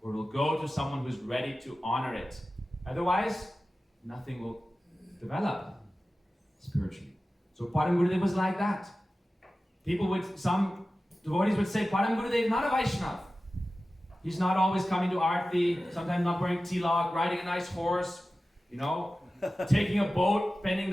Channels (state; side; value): normal; both; correlation 0.95